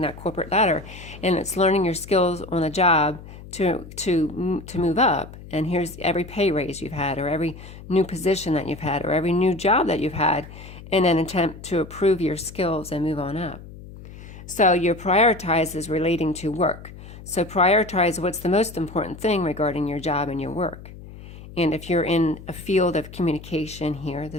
that corporate ladder, and it's learning your skills on the job to move up. And here's every pay raise you've had, or every new position that you've had, or every new job that you've had, in an attempt to improve your skills and move on up. So your prioritize is relating to work. So prioritize what's the most important thing regarding your job and your work. And if you're in a field of communication here,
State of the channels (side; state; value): left; noise; hum, 16 dB below the sound